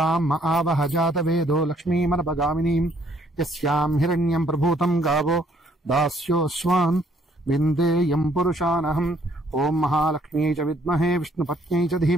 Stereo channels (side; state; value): both; normal; correlation 0.66